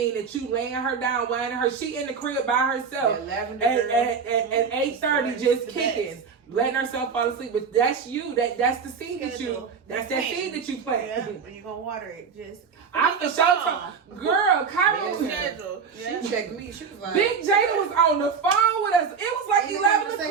that you laying her down, whining her. She in the crib by herself at 8:30, just kicking, letting herself fall asleep. But that's you. That's the seed that you. That's that seed that you plant. Yeah, when you gonna water it, just. I for sure, girl, Kyra, She checked me. She was like, Big Jada was on the phone with us. It was like 11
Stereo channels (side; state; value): left; quieter; 5.9 dB